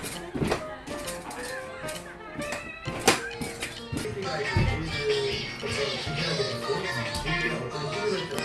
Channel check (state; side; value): identical; both; correlation 1.00